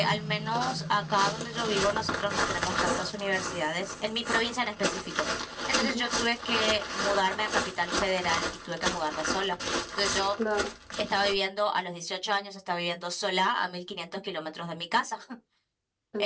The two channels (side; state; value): both; identical; correlation 1.00